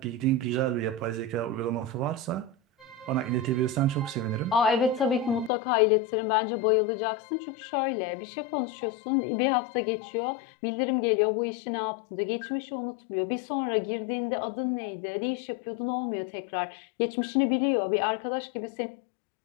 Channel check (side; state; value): right; drops out; at 5.5 s